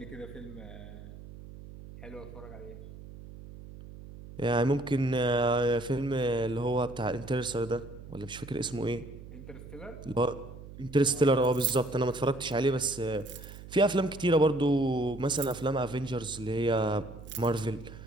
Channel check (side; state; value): right; noise; hum, 15 dB below the sound